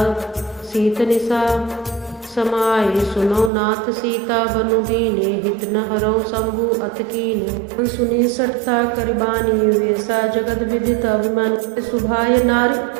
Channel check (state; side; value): drops out; left; at 3.5 s